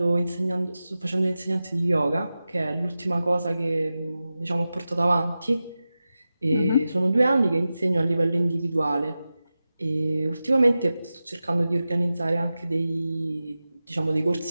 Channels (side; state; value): both; inverted; correlation -0.94